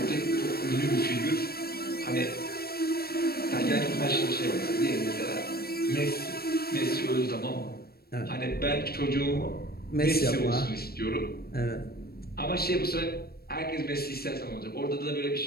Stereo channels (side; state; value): right; late; 0.45 ms